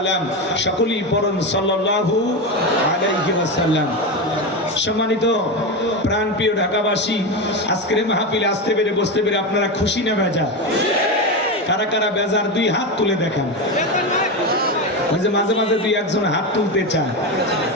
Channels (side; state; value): both; normal; correlation 0.16